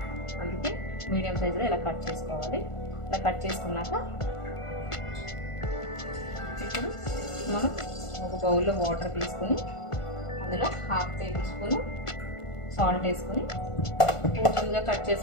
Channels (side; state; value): right; late; 1.5 ms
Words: అందుకే మీడియం సైజులో ఇలా కట్ చేసుకోవాలి ఇలా కట్ చేసుకున్నాక ఇప్పుడు మనం ఒక బౌల్లో వాటర్ తీసుకుని అందులో హాఫ్ టేబుల్ స్పూన్ సాల్ట్ వేసుకొని కొంచెంగా కట్